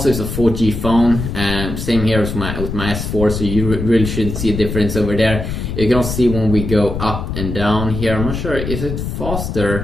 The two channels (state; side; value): noise; left; rumble, 5 dB below the sound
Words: is a 4G phone, same here with my S4, so you really shouldn't see a difference over there. You can also see when we go up and down here, I'm not sure, is it